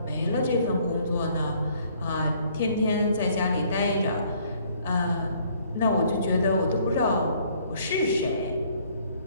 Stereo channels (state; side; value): inverted; both; correlation -0.62